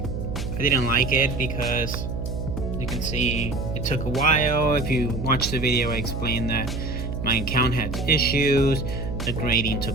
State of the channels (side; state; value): right; noise; hum, 4 dB below the sound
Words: I didn't like it because you can see it took a while. If you watch the video, I explained that my account had issues, the grading